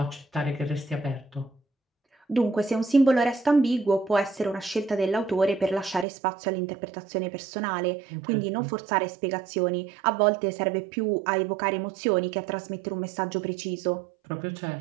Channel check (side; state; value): left; drops out; at 6.1 s